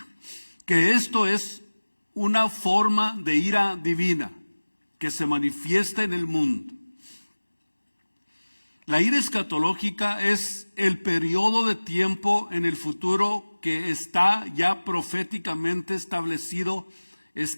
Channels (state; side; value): inverted; both; correlation -1.00